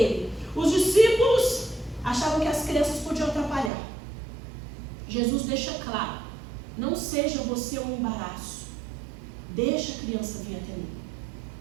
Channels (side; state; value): left; drops out; at 3.7 s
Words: Os discípulos achavam que as crianças podiam atrapalhar. Jesus deixa claro, não seja você um embaraço. Deixa a criança vir até mim.